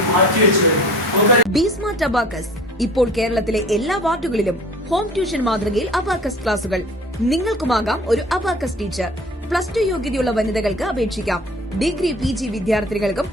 മാറ്റിവെച്ചു കഴിഞ്ഞു. ബി-സ്മാർട്ട് അബാക്കസ് ഇപ്പോൾ കേരളത്തിലെ എല്ലാ വാർഡുകളിലും ഹോം ട്യൂഷൻ മാതൃകയിൽ അബാക്കസ് ക്ലാസുകൾ. നിങ്ങൾക്കുമാകാം ഒരു അബാക്കസ് ടീച്ചർ. +2 യോഗ്യതയുള്ള വനിതകൾക്ക് അപേക്ഷിക്കാം. ഡിഗ്രി PG വിദ്യാർത്ഥികൾക്കും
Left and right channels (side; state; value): both; normal; correlation 0.45